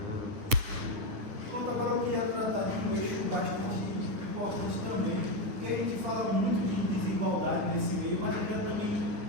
porque a gente fala muito de desigualdade nesse meio, mas eu quero também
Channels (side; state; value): left; late; 9.9 ms